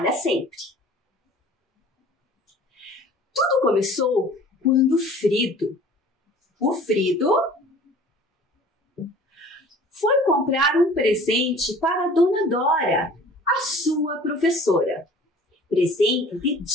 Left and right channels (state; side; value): normal; both; correlation 0.47